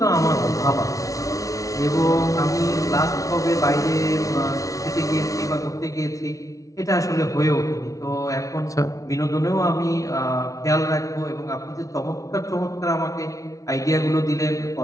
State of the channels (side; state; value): right; late; 0.17 ms